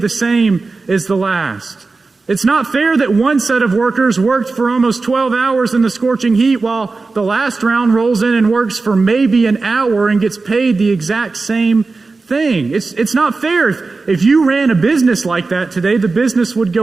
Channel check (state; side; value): quieter; left; 3.9 dB